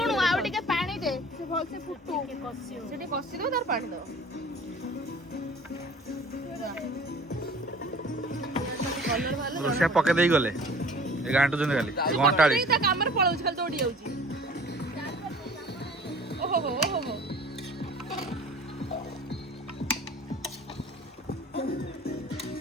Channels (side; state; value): both; normal; correlation 0.47